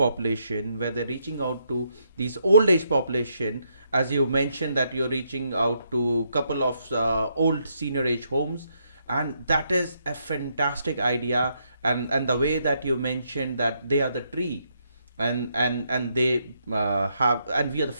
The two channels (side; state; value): both; inverted; correlation -0.76